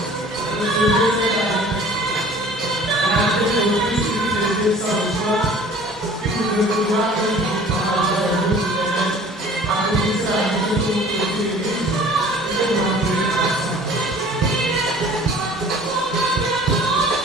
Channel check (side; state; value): both; normal; correlation 0.48